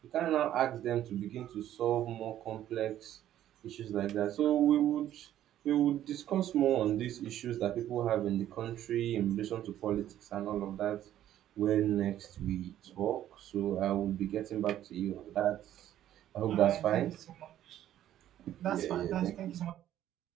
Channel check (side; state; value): left; quieter; 12.0 dB